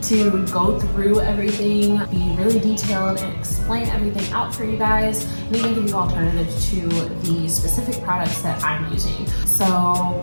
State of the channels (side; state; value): both; inverted; correlation -1.00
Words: to go through everything, be really detailed, and explain everything out for you guys, and even give you alternatives to the specific products that I'm using. So